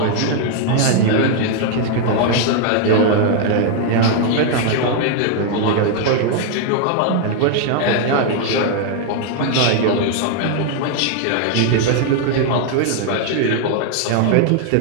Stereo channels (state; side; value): different; both; correlation 0.00